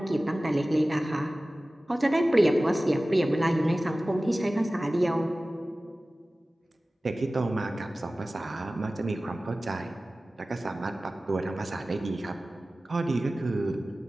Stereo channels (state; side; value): normal; both; correlation 0.97